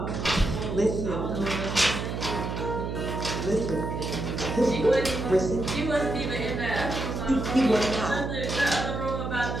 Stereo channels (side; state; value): right; noise; hum, 4 dB below the sound